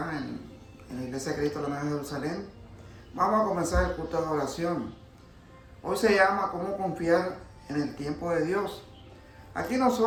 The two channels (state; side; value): identical; both; correlation 1.00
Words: en la Iglesia de Cristo de la Nueva Jerusalén. Vamos a comenzar el culto de oración. Hoy se llama ¿Cómo confiar en el tiempo de Dios? Aquí